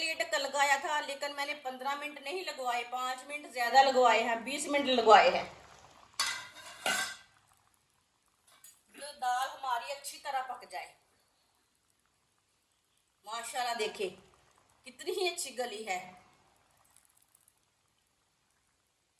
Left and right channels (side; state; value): both; identical; correlation 1.00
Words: ढक्कन लगाया था, लेकिन मैंने 15 मिनट नहीं लगवाए, 5 मिनट ज्यादा लगवाए हैं, 20 मिनट लगवाए हैं। जो दाल हमारी अच्छी तरह पक जाए। माशाल्लाह देखिए कितनी ही अच्छी गली है।